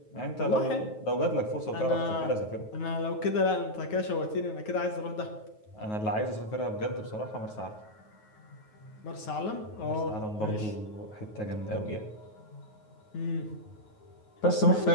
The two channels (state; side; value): late; right; 9.4 ms